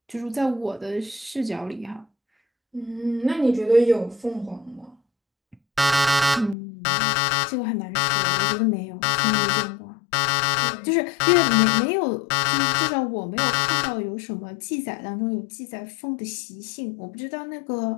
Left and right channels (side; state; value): right; drops out; at 6.6 s